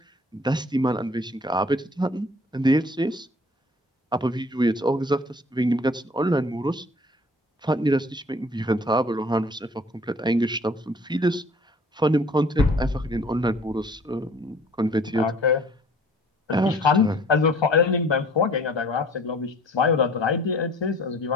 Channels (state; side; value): normal; both; correlation 0.52